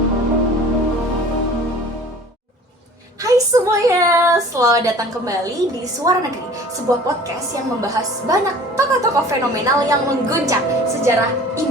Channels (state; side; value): normal; both; correlation 0.46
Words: semuanya, selamat datang kembali di Suara Negeri, sebuah podcast yang membahas banyak tokoh-tokoh fenomenal yang mengguncang sejarah